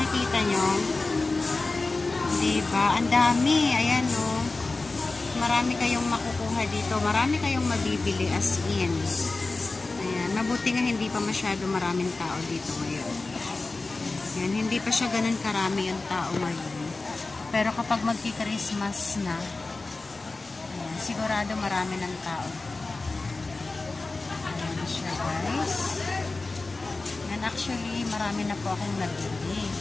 nyo. Diba? Ang dami. Ayan, oh. Marami kayong makukuha dito. Marami kayong mabibili as in. Ayan. Mabuti nga hindi pa masyado maraming tao dito ngayon. Ayan. Hindi pa siya ganun karami yung tao ngayon. Pero kapag magki-Christmas na, ayan, sigurado marami ng tao. Ayan siya, guys. And actually, marami na po akong nabili.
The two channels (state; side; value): quieter; right; 3.5 dB